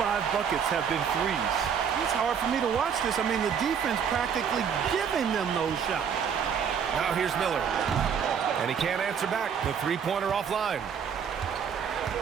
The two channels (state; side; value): quieter; left; 7.4 dB